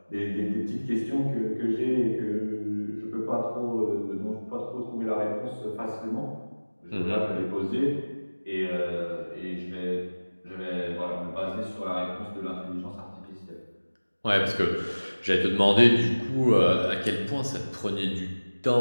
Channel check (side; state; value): both; inverted; correlation -1.00